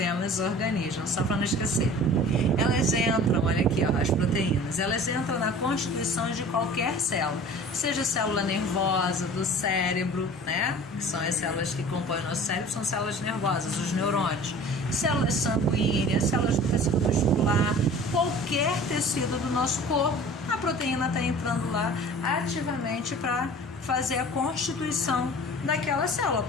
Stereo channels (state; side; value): normal; both; correlation 0.43